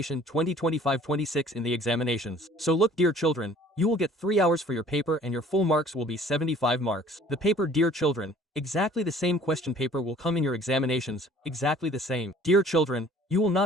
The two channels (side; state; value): both; normal; correlation 0.52